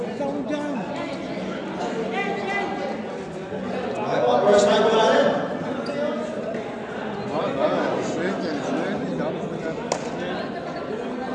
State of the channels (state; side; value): identical; both; correlation 1.00